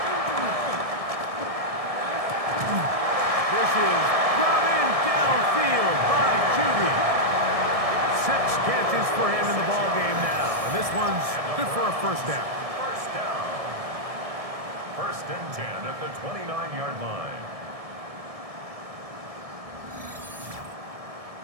This is brought in downfield by Judy. 6 catches for him in the ballgame now. And this one's good for a 1st down. 1st down. 1st and 10 at the 29-yard line.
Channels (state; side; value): late; left; 1.7 ms